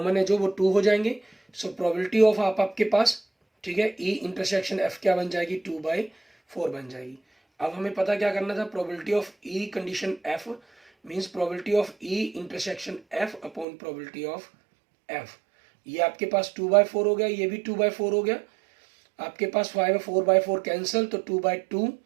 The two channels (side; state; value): left; drops out; at 13.7 s